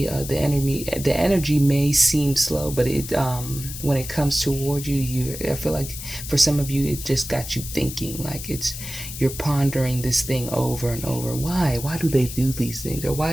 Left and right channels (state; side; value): noise; left; hiss, 10 dB below the sound